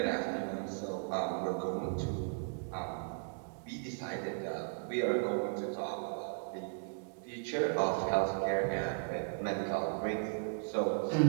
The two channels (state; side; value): silent; left; digital silence